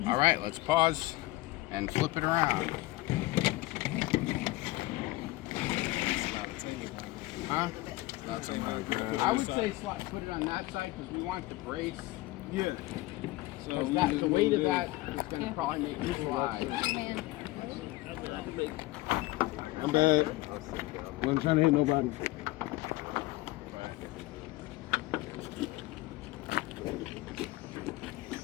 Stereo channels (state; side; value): quieter; right; 19.2 dB